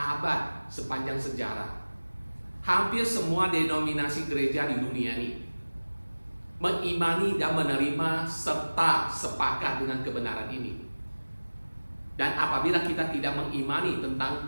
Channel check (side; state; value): both; inverted; correlation -1.00